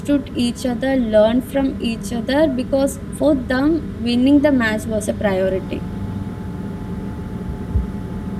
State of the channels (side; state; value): both; identical; correlation 1.00